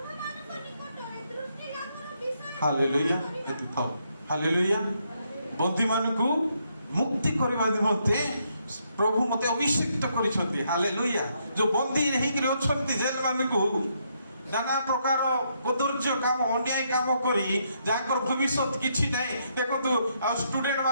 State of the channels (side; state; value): both; inverted; correlation -0.76